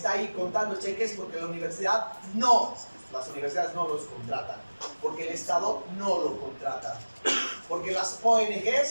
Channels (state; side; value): inverted; both; correlation -1.00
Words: ahí contando cheques porque las universidades no los contratan, porque el Estado no lo contrata, porque las